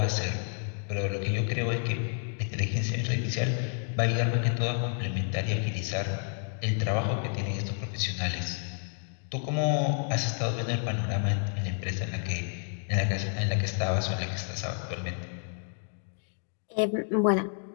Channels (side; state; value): right; silent; 58 dB below the other